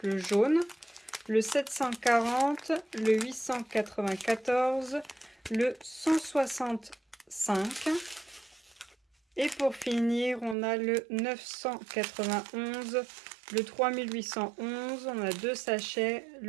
le jaune, le 740, le 894, le 165. Et pour finir, on a le 991, le 3811, on a 2 sachets,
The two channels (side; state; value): left; drops out; at 10.6 s